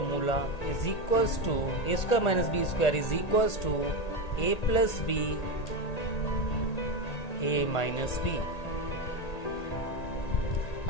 is equals to a square minus b square is equals to a plus b, a minus b.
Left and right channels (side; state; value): right; late; 1.8 ms